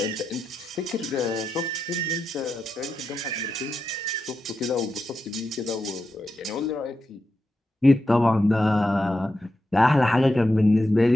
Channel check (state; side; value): normal; both; correlation 0.88